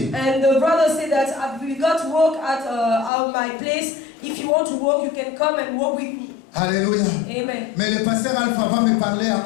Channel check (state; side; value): drops out; right; at 3.1 s